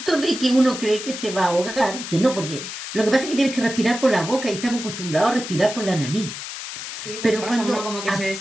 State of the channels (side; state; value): left; noise; hiss, 8 dB below the sound